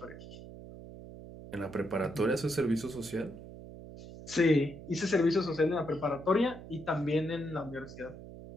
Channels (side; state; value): right; noise; hum, 14 dB below the sound